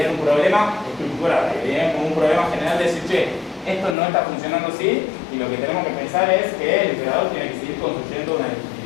un problema estructural, veían como un problema general de decir, che, esto no está funcionando así y lo que tenemos que pensar es que el emperador tiene que seguir construyendo una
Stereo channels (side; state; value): right; drops out; at 4.0 s